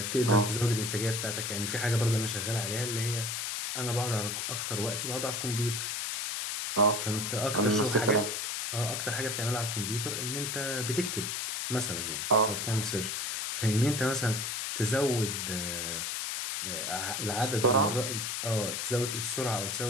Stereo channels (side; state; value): left; noise; hiss, 2 dB below the sound